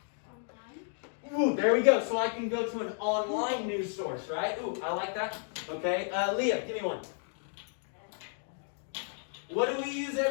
Ooh, there we go. So I can go to an online news source, right? Ooh, I like that. Okay, Leah, give me one. What do we use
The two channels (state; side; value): silent; right; 56 dB below the other